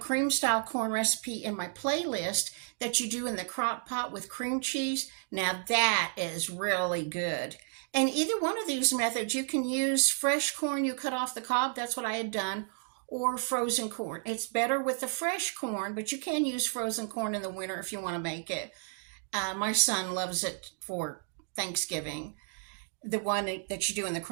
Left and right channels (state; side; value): silent; left; 56 dB below the other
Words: style corn recipe in my playlist that you do in the crock pot with cream cheese. Now that is really good. And either one of these methods, you can use fresh corn you cut off the cob. That's what I had done. Or frozen corn. It's better with the fresh corn, but you can use frozen corn in the winter if you want to make it. My son loves it for Thanksgiving, the one that you do in the